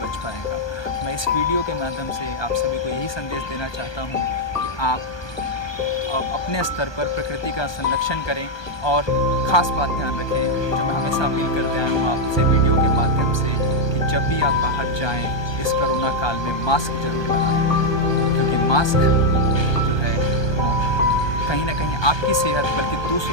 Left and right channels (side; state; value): right; late; 1.2 ms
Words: पाएगा। मैं इस वीडियो के माध्यम से आप सभी को यही संदेश देना चाहता हूँ कि आप अपने स्तर पर प्रकृति का संरक्षण करें। और ख़ास बात ध्यान रखें, जो मैं हमेशा अपील करते आया हूँ आपसे वीडियो के माध्यम से, कि जब भी आप बाहर जाएं इस कोरोना काल में मास्क ज़रूर लगाएं, क्योंकि मास्क जो है वो कहीं ना कहीं आपकी सेहत बल्कि